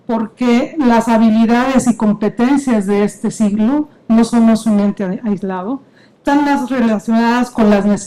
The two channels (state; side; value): identical; both; correlation 1.00